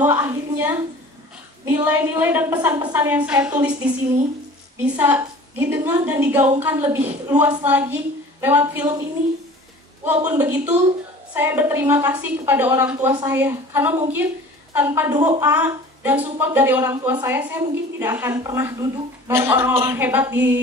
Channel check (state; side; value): normal; both; correlation 0.44